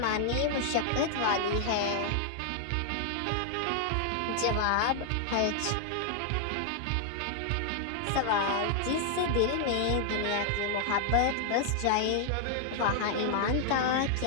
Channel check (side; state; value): both; different; correlation 0.00